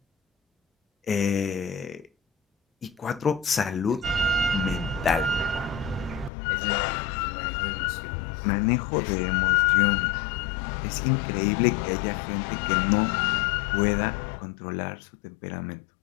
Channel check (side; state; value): right; drops out; at 6.3 s